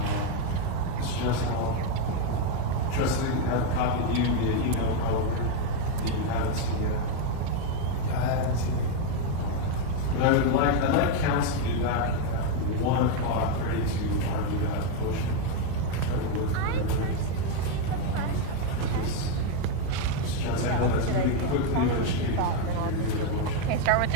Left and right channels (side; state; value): both; different; correlation 0.02